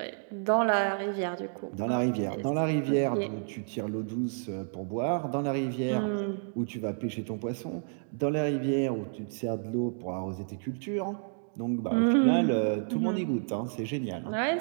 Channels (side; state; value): left; silent; digital silence